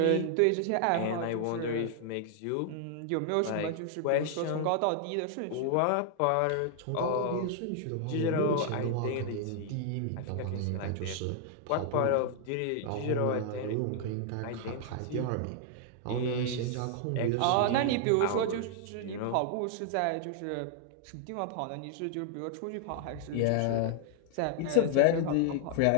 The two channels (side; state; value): both; different; correlation 0.00